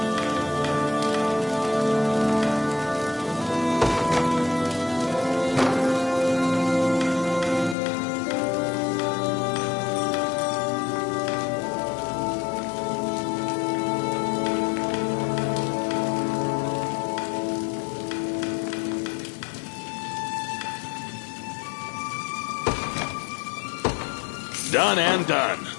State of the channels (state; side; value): drops out; right; at 7.8 s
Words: Done and done.